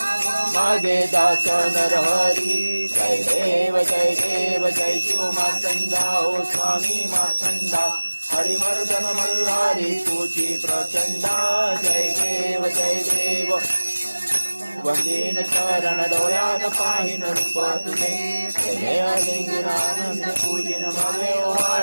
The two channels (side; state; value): both; inverted; correlation -1.00